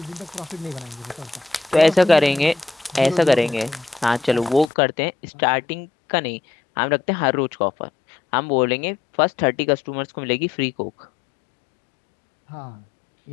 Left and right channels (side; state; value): right; drops out; at 4.7 s